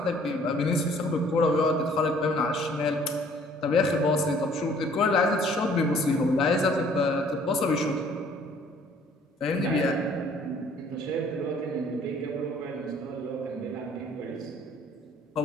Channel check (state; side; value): normal; both; correlation 0.57